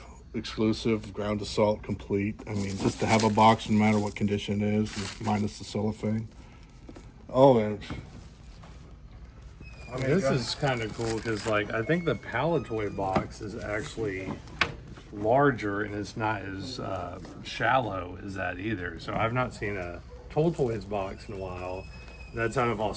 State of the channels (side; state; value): both; identical; correlation 1.00